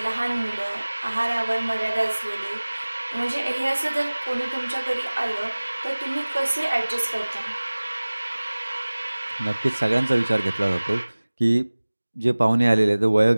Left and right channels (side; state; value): both; inverted; correlation -1.00